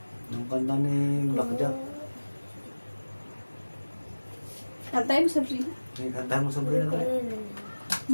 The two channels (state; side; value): inverted; both; correlation -1.00